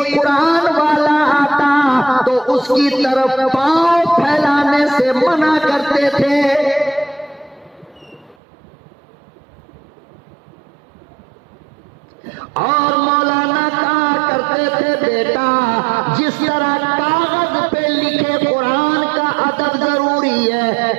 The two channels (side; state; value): left; drops out; at 8.3 s